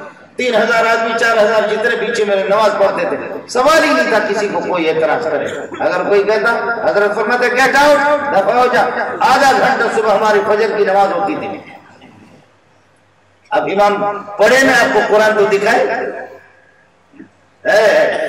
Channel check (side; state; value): both; identical; correlation 1.00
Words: 3000 آدمی 4000 جتنے پیچھے میرے نماز پڑھتے تھے، سوال ہی نہیں تھا کسی کو کوئی اعتراض کرے۔ اگر کوئی کہتا، حضرت فرماتے گیٹ آؤٹ، دفع ہو جا۔ آدھا گھنٹہ صبح ہماری فجر کی نماز ہوتی تھی۔ اب امام پڑھے نا آپ کو قرآن تو دکھائے۔